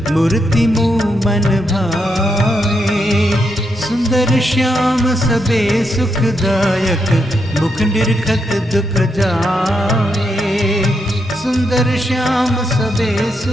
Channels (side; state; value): both; normal; correlation 0.81